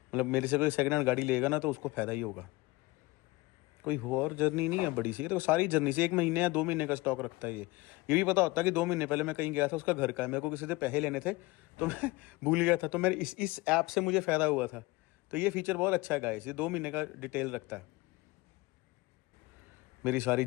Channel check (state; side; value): quieter; right; 22.2 dB